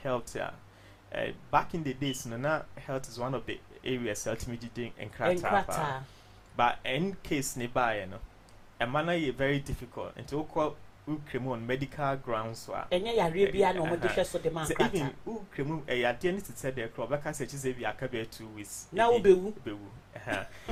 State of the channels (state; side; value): identical; both; correlation 1.00